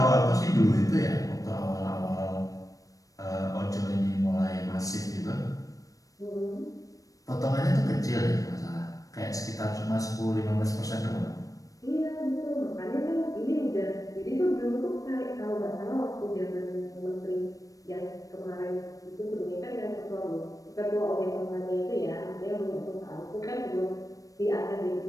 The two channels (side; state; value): right; late; 0.16 ms